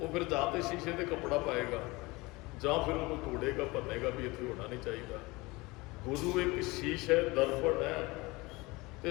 ਫਿਰ ਜਾਂ ਤੇ ਸ਼ੀਸ਼ੇ ਤੇ ਕੱਪੜਾ ਪਾਏਗਾ ਜਾਂ ਫਿਰ ਉਹਨੂੰ ਤੋੜੇਗਾ, ਭੰਨੇਗਾ ਵੀ ਇੱਥੇ ਹੋਣਾ ਨਹੀਂ ਚਾਹੀਦਾ। ਗੁਰੂ ਇੱਕ ਸ਼ੀਸ਼ ਹੈ, ਦਰਪਣ ਹੈ।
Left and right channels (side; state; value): right; quieter; 23.1 dB